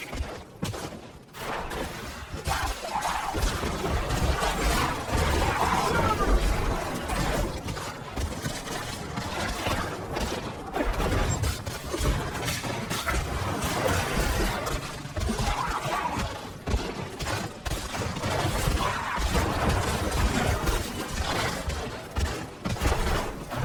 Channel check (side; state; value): both; identical; correlation 1.00